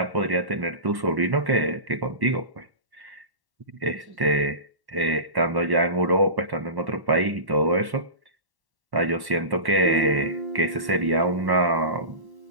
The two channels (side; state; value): left; late; 1.1 ms